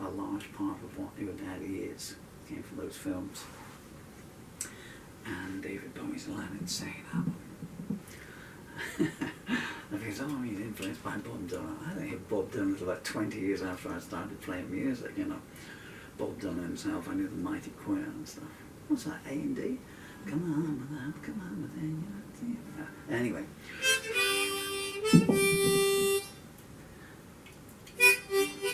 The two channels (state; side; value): identical; both; correlation 1.00